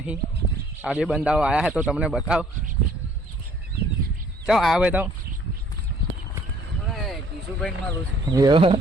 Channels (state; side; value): normal; both; correlation 0.59